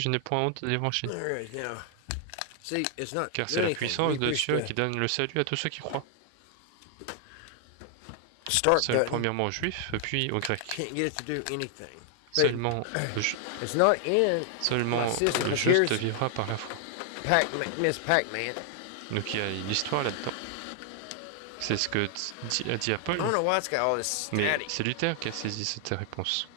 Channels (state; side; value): different; both; correlation 0.00